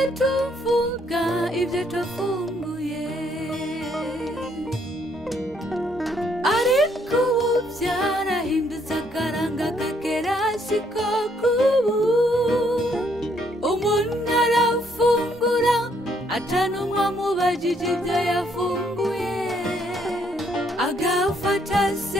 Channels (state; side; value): normal; both; correlation 0.69